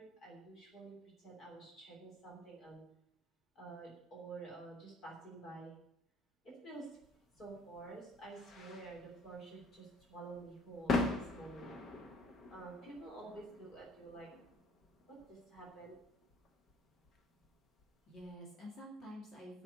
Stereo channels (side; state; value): both; normal; correlation 0.57